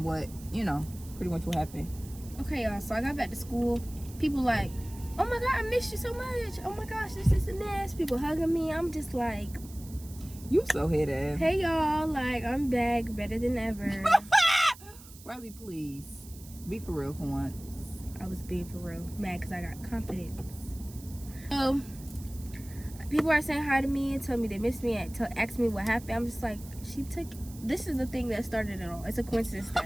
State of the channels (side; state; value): right; noise; hiss, 19 dB below the sound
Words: what, pretty much what happened. Okay, y'all. So I got back to school. People like, oh my God, I missed you so much. Oh my gosh, this and this. People hugging me. I'm just like, you so head ass. hey y'all, like I'm back, better than ever. Riley, please be for real for once. I was being for real, mad because I got confidence. So people are saying hi to me and tell me they miss me and ask me what happened. I'm just like, this is the thing that started it all. It's a coincidence